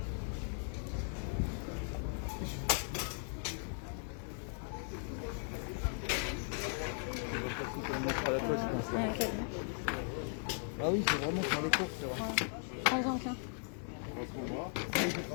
Ah oui, c'est vraiment sur les courses, c'est vrai. Prends-en qu'un.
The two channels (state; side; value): silent; right; 53 dB below the other